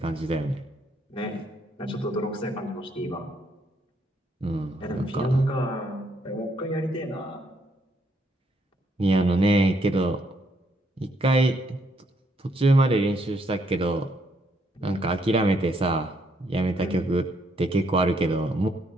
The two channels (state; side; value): normal; both; correlation 0.72